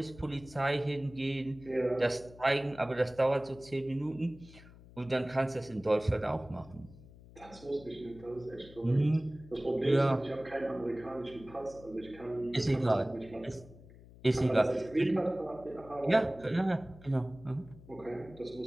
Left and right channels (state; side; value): noise; left; hum, 20 dB below the sound